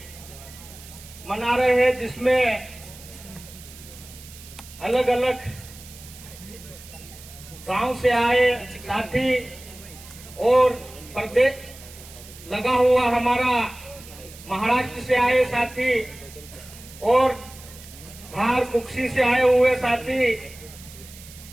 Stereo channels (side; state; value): right; noise; hiss, 18 dB below the sound